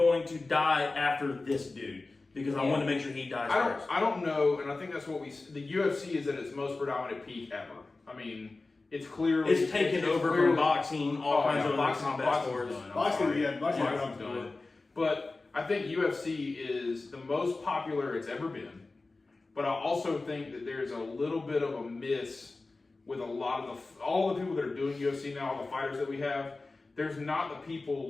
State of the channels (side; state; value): right; quieter; 3.5 dB